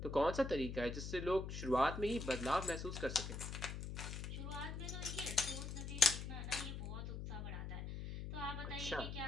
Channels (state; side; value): noise; left; hum, 6 dB below the sound